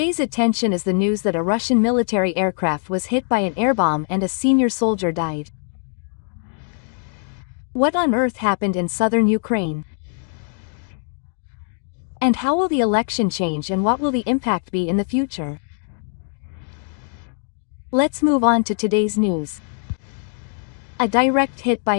attention is the news that a Russian military aircraft was hit by an air bomb and a senior soldier died. What on earth happened in southern Ukraine? And how will the election change and what will the impact be in the future? Let's move on to today's news. A direct hit by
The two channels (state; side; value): silent; right; 59 dB below the other